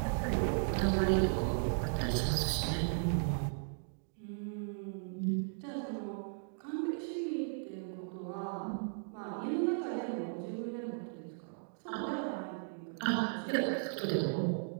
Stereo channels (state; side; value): silent; left; digital silence